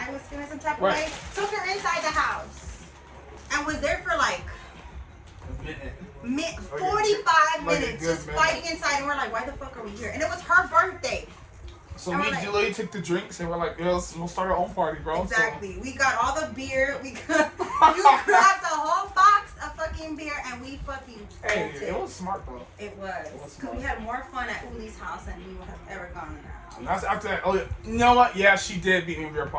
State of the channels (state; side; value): identical; both; correlation 1.00